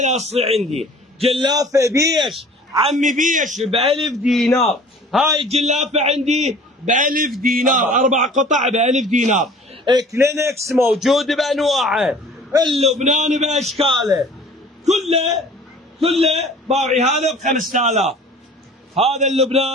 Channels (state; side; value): normal; both; correlation 0.48